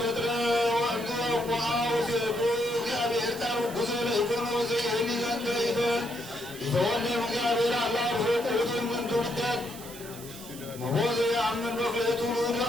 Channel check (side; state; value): right; noise; hiss, 15 dB below the sound